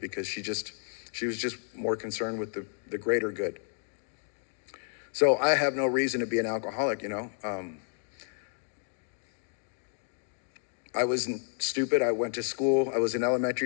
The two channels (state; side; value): silent; right; 57 dB below the other